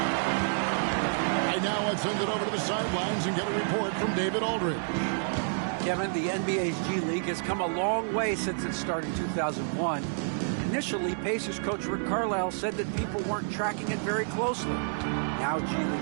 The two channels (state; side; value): silent; left; digital silence